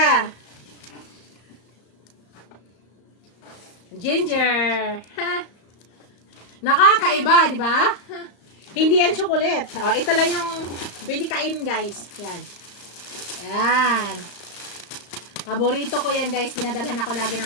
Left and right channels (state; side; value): late; right; 35 ms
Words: Ginger. Ha? Nakakaiba, di ba? Hindi yan chocolate. Oh, ito lang yung pwede kain, guys. Yan. Yan. Paborito ko yan, guys. Dinadalhan ako lagi